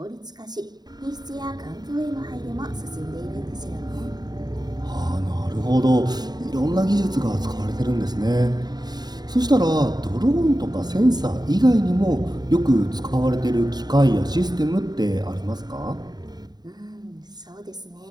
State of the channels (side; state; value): left; late; 0.20 ms